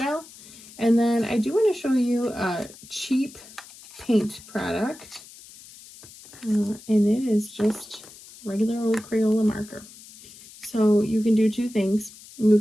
And then I do want to show you a cheap paint product. And it is just regular old Crayola marker. So you can do two things. You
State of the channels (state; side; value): noise; left; hiss, 20 dB below the sound